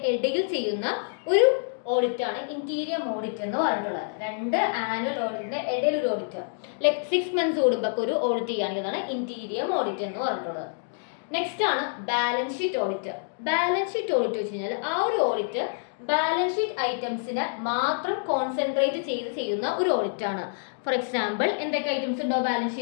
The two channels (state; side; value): silent; right; digital silence